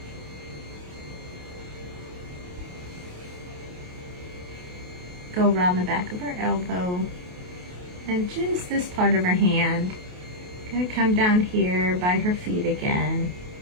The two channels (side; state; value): left; late; 28 ms